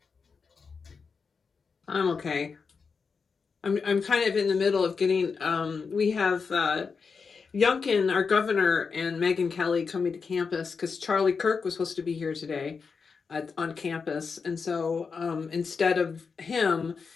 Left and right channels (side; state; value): right; quieter; 5.3 dB